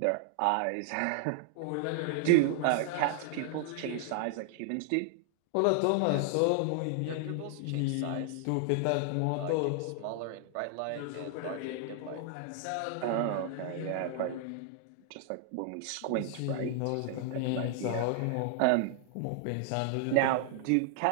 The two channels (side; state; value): both; different; correlation 0.00